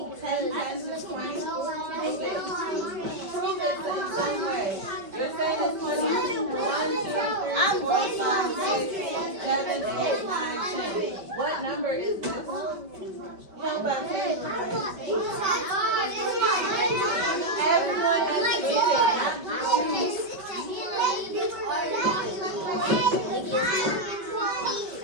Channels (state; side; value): late; left; 5.2 ms